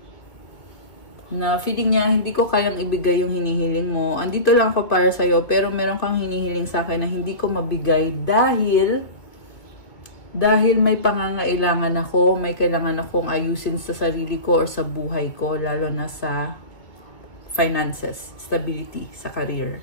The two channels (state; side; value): late; right; 2.4 ms